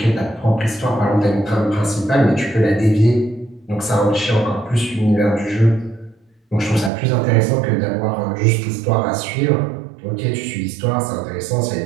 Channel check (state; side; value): drops out; left; at 6.9 s